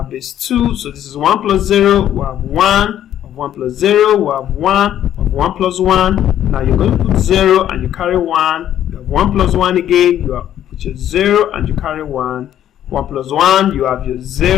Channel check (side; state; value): right; quieter; 11.1 dB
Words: base 2, so this is 1 plus 0, we have 1, of 1 plus 0, we have 1, of 1 plus 1. Now you're going to put 0 and you carry 1. You have 1 plus 1 again, you put your 0 and you carry 1. 1 plus 1, you have your